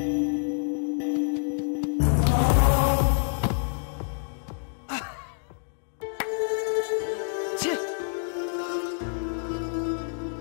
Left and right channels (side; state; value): right; silent; digital silence